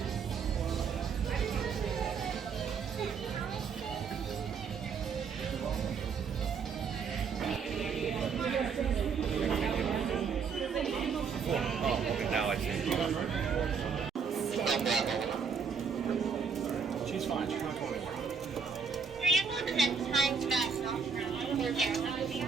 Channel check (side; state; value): left; quieter; 5.9 dB